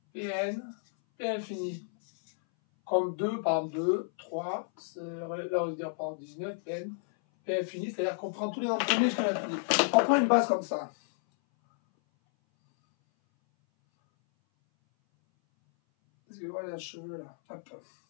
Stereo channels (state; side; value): silent; right; 57 dB below the other